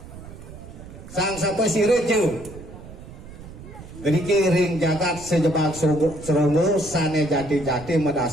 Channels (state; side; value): noise; right; rumble, 15 dB below the sound